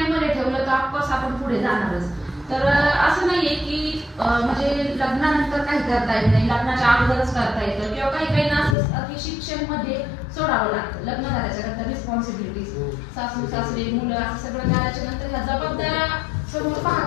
ठेवलं तर ऑफकोर्स आपण पुढे जाणारच. तर असं नाहीये की म्हणजे लग्नानंतर काही करता येत नाही, लग्नाच्या अगोदरच करता येतं, किंवा काही काहींना असं असतं की शिक्षण मध्ये सोडावं लागतं. लग्न झाल्याच्या नंतर रिस्पॉन्सिबिलिटीज, सासू सासरे मुलं असं सगळं झाल्याच्या नंतर ह्या जबाबदाऱ्या समोर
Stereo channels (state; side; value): drops out; right; at 8.8 s